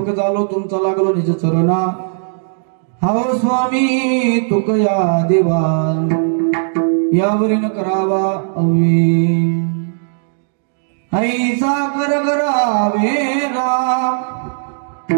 झालो तुमचा लागलो निज चरणा हाव स्वामी तुकया देवा यावरीन करावा अवे ऐसा कर करावे राम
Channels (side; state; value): left; silent; digital silence